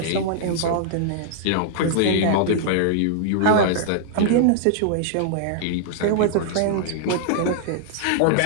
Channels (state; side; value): different; both; correlation -0.01